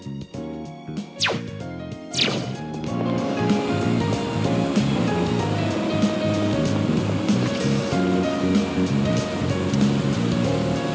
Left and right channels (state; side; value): identical; both; correlation 1.00